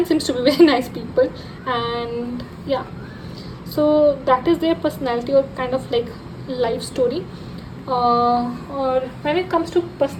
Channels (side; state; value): both; identical; correlation 1.00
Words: seems to be very nice people. And yeah, so that is their personality or kind of like life story. Or when it comes to